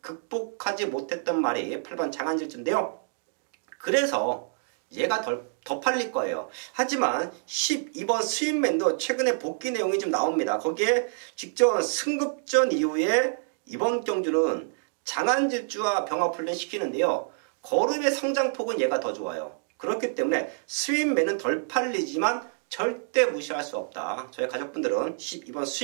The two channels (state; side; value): silent; left; digital silence